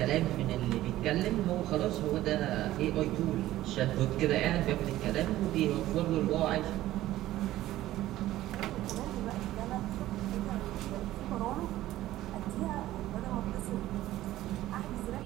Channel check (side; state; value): left; quieter; 15.0 dB